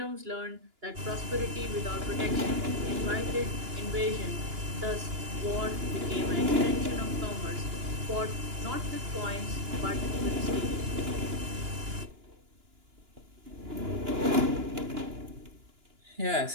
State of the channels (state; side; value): late; left; 2.9 ms